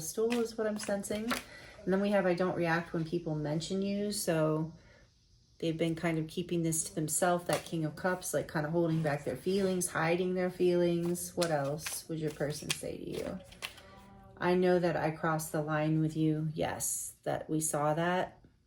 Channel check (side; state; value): both; identical; correlation 1.00